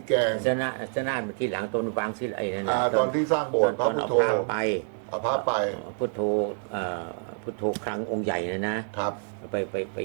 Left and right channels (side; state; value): left; silent; 60 dB below the other